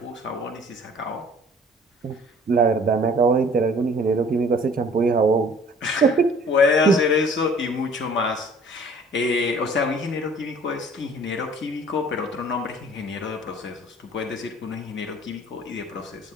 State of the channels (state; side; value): normal; both; correlation 0.52